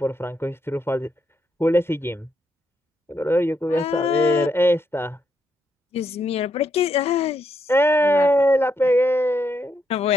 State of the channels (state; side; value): normal; both; correlation 0.78